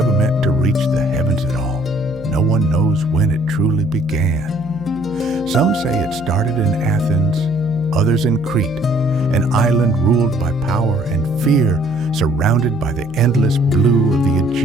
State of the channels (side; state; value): right; noise; hum, 18 dB below the sound